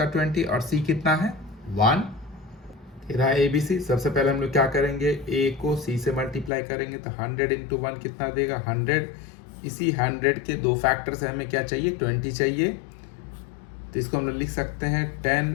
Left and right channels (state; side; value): drops out; right; at 6.5 s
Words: 20, और c कितना है, 1। रहा ABC। सबसे पहले हम लोग क्या करेंगे, a को c से मल्टीप्लाई करेंगे, तो 100 इंटू 1 कितना देगा, 100। इसी 100 के दो फैक्टर से हमें क्या चाहिए, 20 चाहिए। तो इसको हम लोग लिख सकते हैं